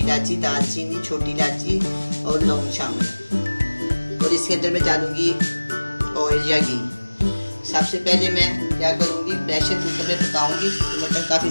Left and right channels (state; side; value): inverted; both; correlation -1.00